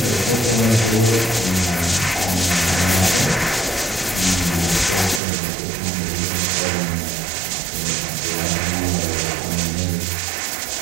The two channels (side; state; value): left; drops out; at 5.2 s